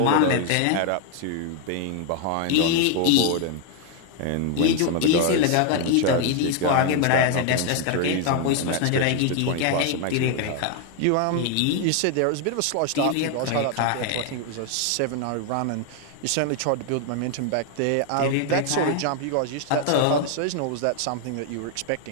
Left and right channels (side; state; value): both; different; correlation 0.01